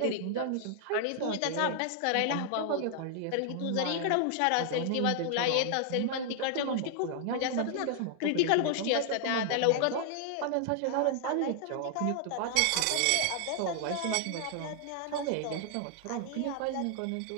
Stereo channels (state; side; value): different; both; correlation 0.00